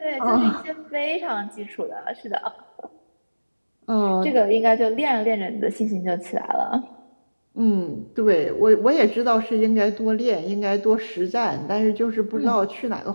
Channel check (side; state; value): both; inverted; correlation -1.00